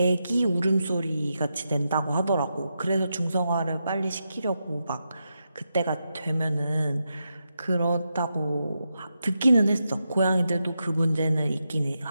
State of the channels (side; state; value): both; inverted; correlation -0.86